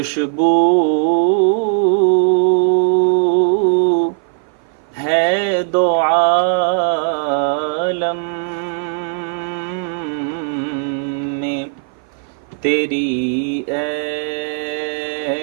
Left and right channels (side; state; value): left; silent; 57 dB below the other